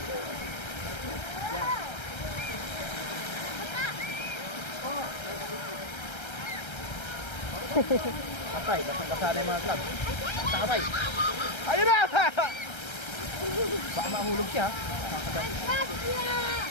Patay, basa na yung mga club. Sakabay. Ayun na! Baka mahulog siya.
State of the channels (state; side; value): late; right; 1.3 ms